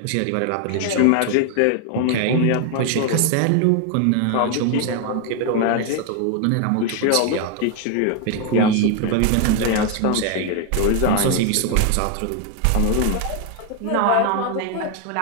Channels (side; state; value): both; different; correlation 0.01